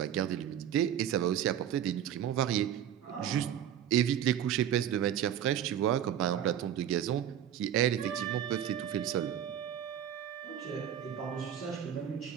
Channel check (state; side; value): quieter; left; 10.1 dB